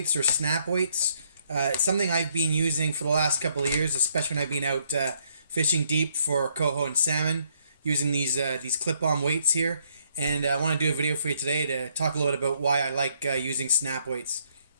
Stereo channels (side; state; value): both; inverted; correlation -0.70